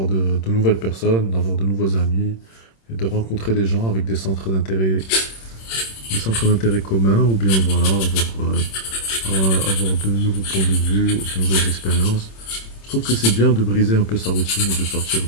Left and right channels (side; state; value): right; late; 26 ms